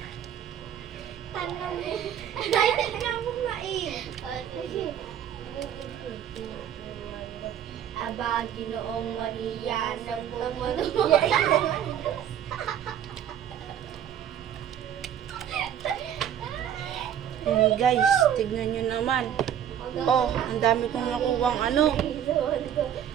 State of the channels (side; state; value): left; quieter; 9.8 dB